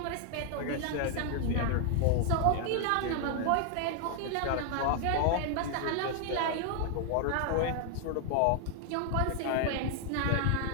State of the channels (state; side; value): different; both; correlation 0.00